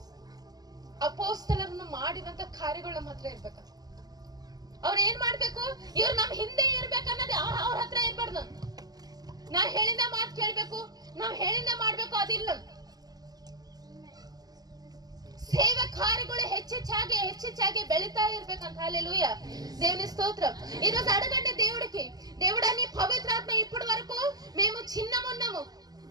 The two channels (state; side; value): late; left; 0.19 ms